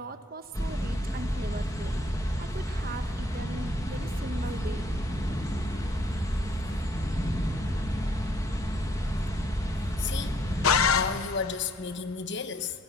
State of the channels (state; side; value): normal; both; correlation 0.64